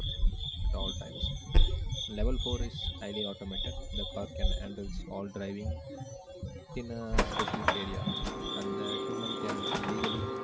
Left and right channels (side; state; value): both; identical; correlation 1.00